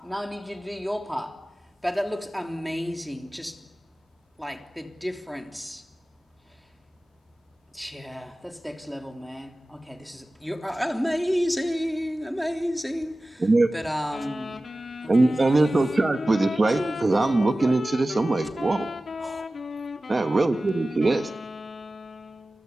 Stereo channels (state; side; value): normal; both; correlation 0.96